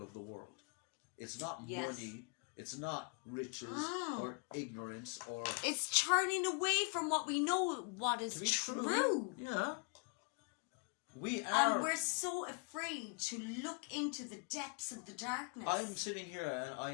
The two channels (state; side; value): quieter; right; 34.3 dB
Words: of the world. It's not money, it's not riches or ignorance or... It's turning away from what we know, what is true. Yeah. We are... And we're so afraid to look into the depths of the darkness. I'm sitting here and